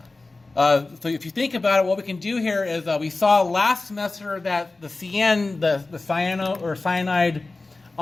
So if you think about it, what we can do here is we saw last semester that the CN, the cyano or cyanide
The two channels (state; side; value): quieter; right; 3.4 dB